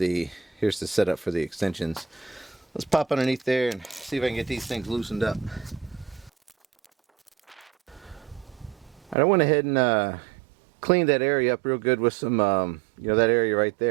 setup for the extensions. Let's pop underneath there and see if I can get these things loosened up. I went ahead and cleaned that area up real good with some, you know, that area right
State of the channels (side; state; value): left; drops out; at 9.2 s